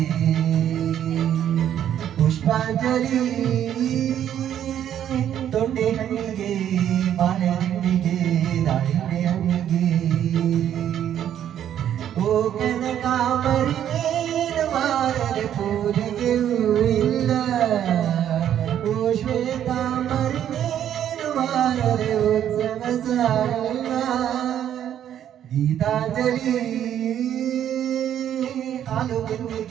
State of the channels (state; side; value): quieter; left; 10.3 dB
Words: ಪುಷ್ಪಾಂಜಲಿ ತೊಂಡೆ ಹಣ್ಣಿಗೆ ಬಾಳೆ ಹಣ್ಣಿಗೆ ದಾಳಿಂಬೆ ಹಣ್ಣಿಗೆ ಓ ಕನಕಾಂಬರಿ ನೀನು ಬಾರದೆ ಪೂಜೆಗೆಯೂ ಇಲ್ಲ ಓ ಶ್ವೇತಾಂಬರಿ ನೀನು ಬಾರದೆ ಉತ್ಸವ ಸಾಗಲ್ಲ ಗೀತಾಂಜಲಿ ಹಾಲು